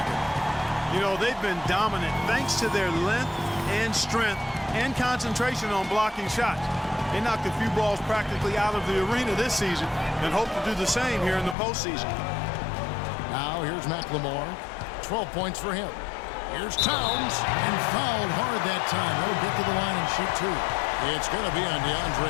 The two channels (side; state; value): right; drops out; at 11.6 s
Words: You know, they've been dominant thanks to their length and strength and concentration on blocking shots. They knocked a few balls practically out of the arena this season and hope to do the same here in the postseason. Now here's McLemore. 12 points for him. Here's Towns, and fouled hard that time. He'll get to the line and shoot two. It's going to be on